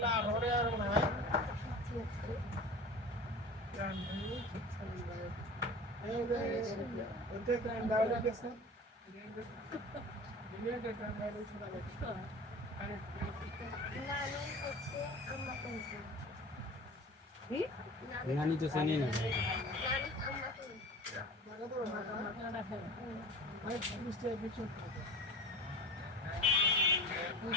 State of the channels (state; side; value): normal; both; correlation 0.37